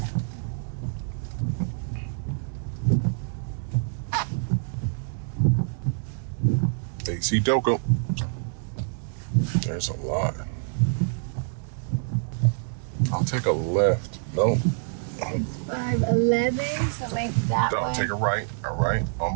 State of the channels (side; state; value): left; silent; digital silence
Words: AC Doko. There's a lot. I'll take a left. No. 511, so maybe that way. I'll take a right. All right,